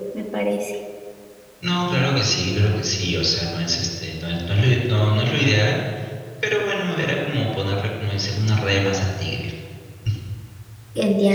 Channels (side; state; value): both; identical; correlation 1.00